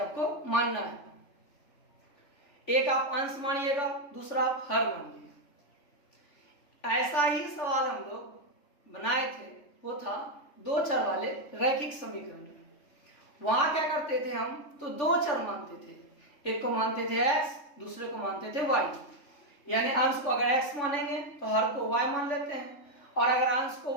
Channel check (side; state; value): right; late; 3.4 ms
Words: मानना है। एक आप अंश मानिएगा, दूसरा आप हर मानिएगा। ऐसा ही सवाल हम लोग बनाए थे, वो था दो चर वाले रैखिक समीकरण। वहां क्या करते थे हम, तो दो चर मानते थे, एक को मानते थे x, दूसरे को मानते थे y। यानी अंश को अगर x मानेंगे तो हर को y मान लेते हैं, और अगर अंश को